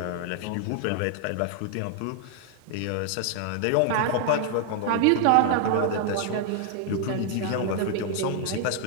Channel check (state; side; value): different; both; correlation 0.00